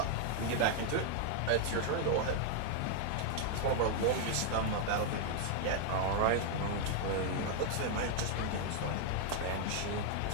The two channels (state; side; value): different; both; correlation 0.00